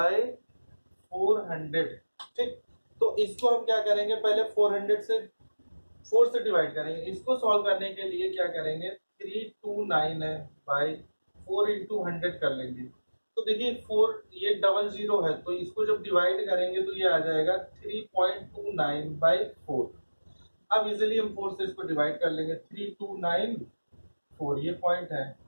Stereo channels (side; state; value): both; inverted; correlation -1.00